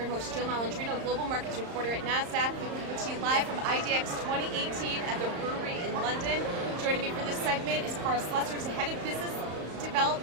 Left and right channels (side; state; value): left; late; 34 ms